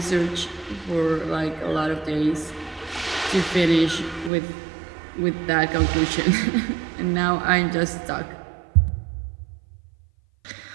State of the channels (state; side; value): drops out; left; at 4.3 s